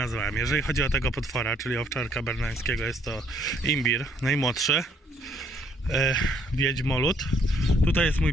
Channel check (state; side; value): normal; both; correlation 0.66